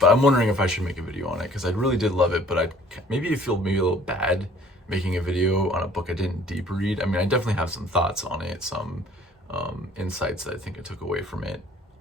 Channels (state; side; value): normal; both; correlation 0.54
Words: I'm wondering if I should make a video on it, because I really did love it, but I feel a little bad making a video on a book I didn't deep read. I mean, I definitely have some thoughts on it, some insights that I think I took away from it,